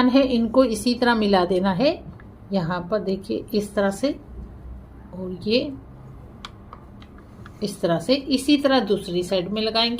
है, इनको इसी तरह मिला देना है यहाँ पर, देखिए इस तरह से। और ये इस तरह से, इसी तरह दूसरी साइड में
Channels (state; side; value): identical; both; correlation 1.00